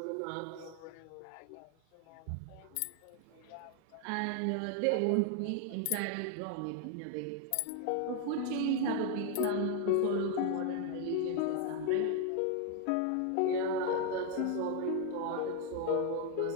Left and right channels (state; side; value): different; both; correlation 0.01